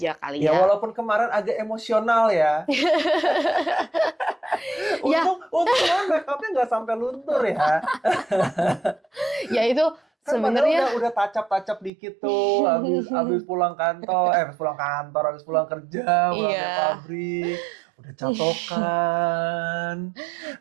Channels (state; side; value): drops out; left; at 11.9 s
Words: kali Ya ya. walaupun kemarin agak emosional ya. Ya. Untung kan make-upnya nggak sampai luntur ya. Ya itu Kan sebenarnya udah tacap-tacap dikit tuh habis pulang habis pulang kerja, pulang dari iya. pabrik, udah catokan,